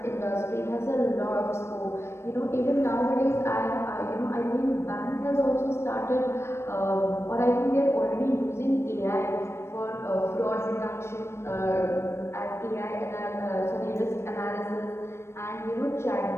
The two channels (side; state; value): right; late; 0.13 ms